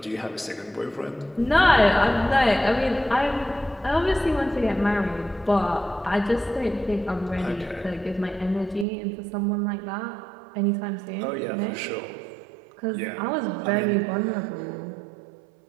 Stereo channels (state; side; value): drops out; left; at 8.8 s